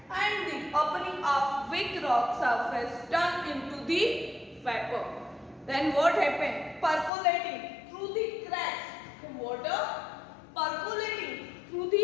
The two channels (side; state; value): right; drops out; at 7.1 s